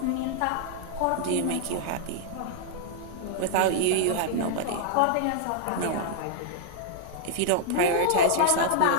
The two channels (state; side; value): different; both; correlation -0.01